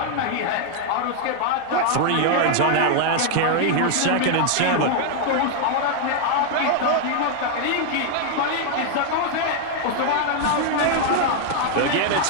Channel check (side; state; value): both; different; correlation 0.00